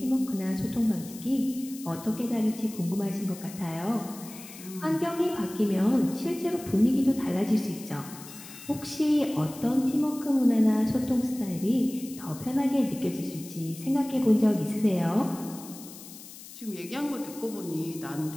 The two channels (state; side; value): noise; left; hiss, 16 dB below the sound